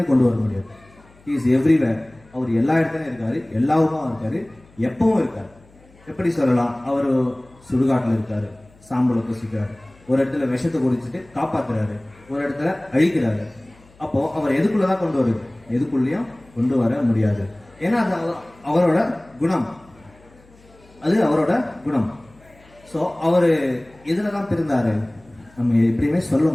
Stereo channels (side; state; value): left; noise; hum, 28 dB below the sound